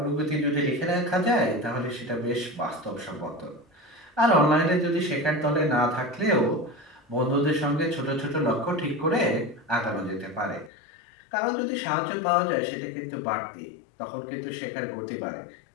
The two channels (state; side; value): drops out; right; at 10.7 s